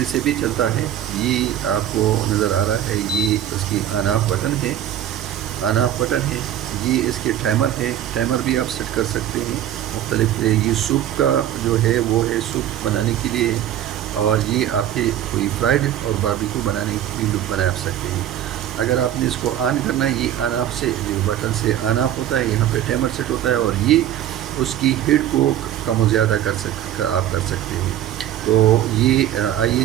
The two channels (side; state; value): left; quieter; 11.4 dB